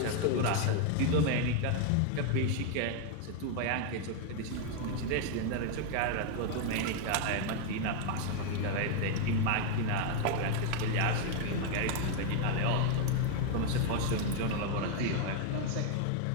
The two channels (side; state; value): both; different; correlation 0.00